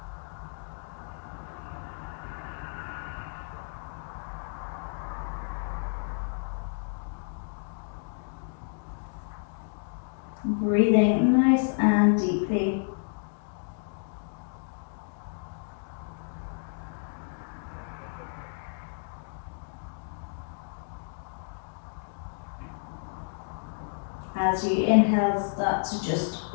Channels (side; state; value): right; silent; digital silence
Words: Breathing nice and deeply. As you inhale, start to just